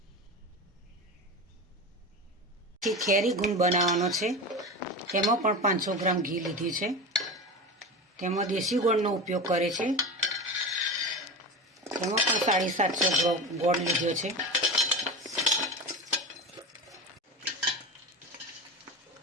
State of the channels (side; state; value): both; normal; correlation 0.26